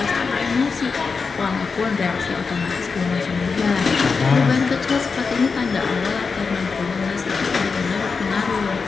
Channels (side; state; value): right; quieter; 4.9 dB